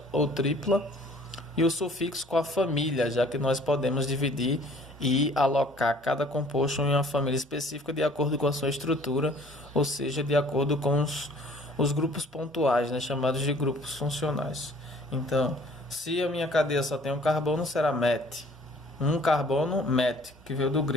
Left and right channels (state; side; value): normal; both; correlation 0.54